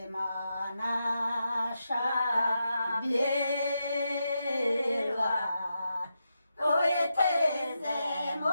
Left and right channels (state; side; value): inverted; both; correlation -0.86